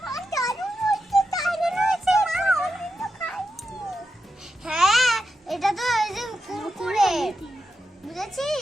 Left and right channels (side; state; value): both; normal; correlation 0.88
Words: হ্যাঁ, এটা তো এই যে কুরকুরে,